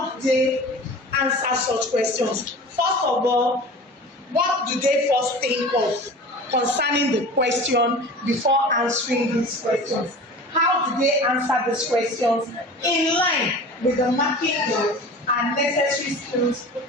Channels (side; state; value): both; normal; correlation 0.38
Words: do they answer such questions? First of all, what do they first think of concerning the question before answering these questions? How do they answer these questions in line with the marking and necessary skills